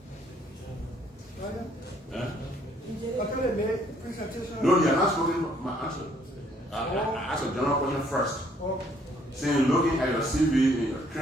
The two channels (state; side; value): normal; both; correlation 0.65